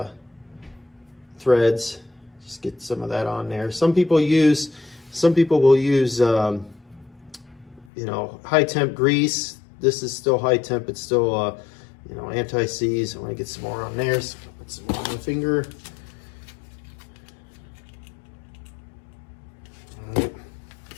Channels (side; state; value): right; drops out; at 7.9 s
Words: threads. Just get some of that on there. Some people will use you know, high temp grease. This is still high temp. It's still you know, anti-seize. I want to get some more on there. So put some more on the finger. All right.